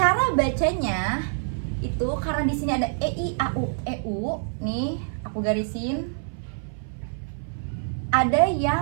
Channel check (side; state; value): left; silent; 58 dB below the other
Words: bacanya itu karena di sini ada EI, AU, EU. Nih, aku garisin. Ada